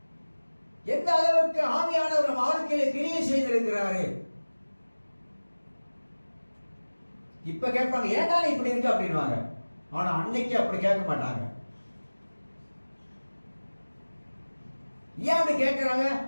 எந்த அளவுக்கு ஆவியானவர் வாழ்க்கையில கிரியை செய்திருக்கிறாரு. இப்ப கேட்பாங்க, ஏன்டா இப்படி இருக்கு அப்படின்வாங்க. ஆனா அன்னைக்கு அப்படி கேட்க மாட்டாங்க. ஏன் அப்படி கேட்கிறாங்க?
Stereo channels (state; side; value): inverted; both; correlation -1.00